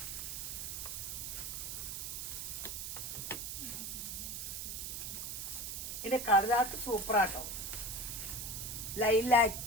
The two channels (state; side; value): noise; right; hiss, 5 dB below the sound